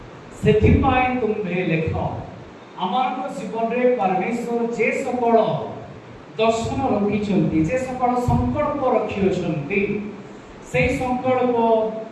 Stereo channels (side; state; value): both; identical; correlation 1.00